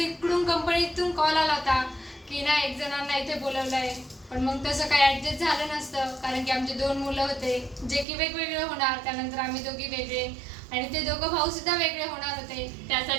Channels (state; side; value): drops out; left; at 8.1 s